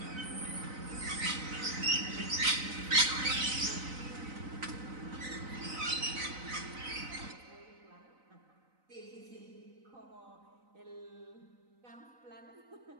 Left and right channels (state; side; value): late; left; 3.9 ms